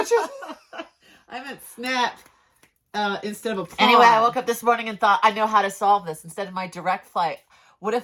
meant snap instead of applaud. Anyway, I woke up this morning and thought, I know how to solve this. Instead of my direct flight, what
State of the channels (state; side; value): identical; both; correlation 1.00